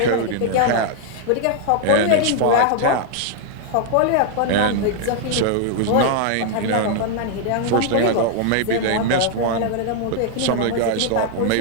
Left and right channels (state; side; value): different; both; correlation 0.00